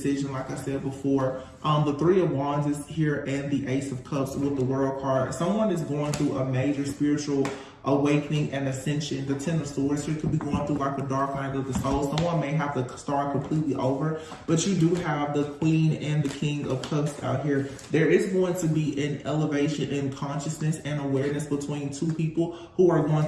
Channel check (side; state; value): both; identical; correlation 1.00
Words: like I said before. The Three of Wands is here, and the Ace of Cups with the World card. Someone is going through a major spiritual awakening and ascension. The Ten of Swords here could be going through like a dark night of the soul. Someone may have to start completely over, but you do have the Queen and the King of Cups out here. There is going to be an elevation in consciousness and awareness between two people who are going